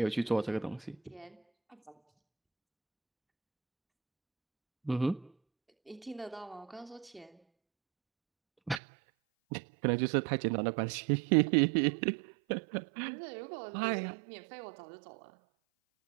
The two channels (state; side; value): drops out; left; at 8.8 s